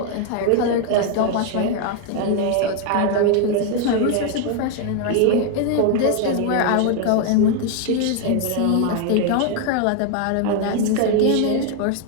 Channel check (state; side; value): different; both; correlation 0.01